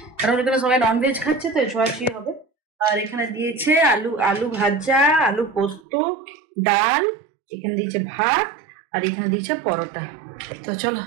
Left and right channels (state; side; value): drops out; left; at 5.8 s